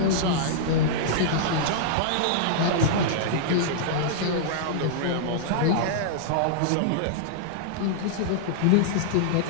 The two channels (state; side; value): different; both; correlation -0.02